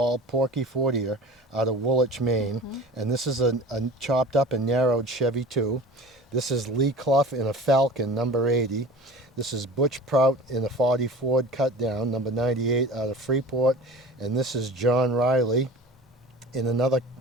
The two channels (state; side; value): normal; both; correlation 0.38